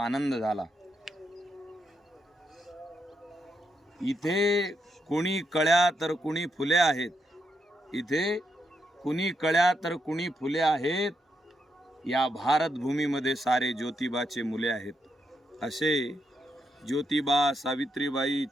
झाला। इथे कुणी कळ्या तर कुणी फुले आहेत, इथे कुणी कळ्या तर कुणी फुले आहेत, या भारत भूमीमध्ये सारे ज्योतिबाचे मुले आहेत। असे ज्योतिबा, सावित्रीबाई,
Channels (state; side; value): normal; both; correlation 0.81